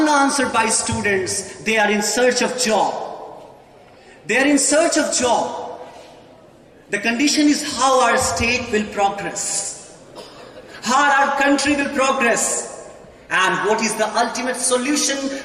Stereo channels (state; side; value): identical; both; correlation 1.00